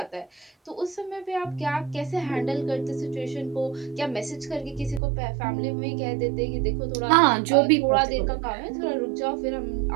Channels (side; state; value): left; drops out; at 5.0 s